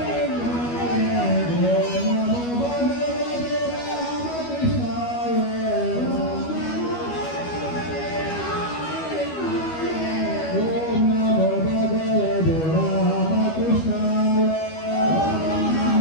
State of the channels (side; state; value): right; late; 12 ms